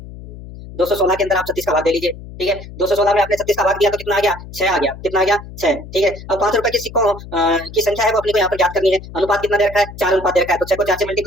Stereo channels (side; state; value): left; noise; hum, 14 dB below the sound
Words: 216 के अंदर आप 36 का भाग दे लीजिए। ठीक है, 216 में आपने 36 का भाग दिया तो कितना आ गया 6 आ गया, कितना आ गया 6। ठीक है, अब 5 रुपए के सिक्कों की संख्या है वो अपने को यहाँ पर ज्ञात करनी है। अनुपात कितना दे रखा है, 4 अनुपात दे रखा है, तो 6 को 4 से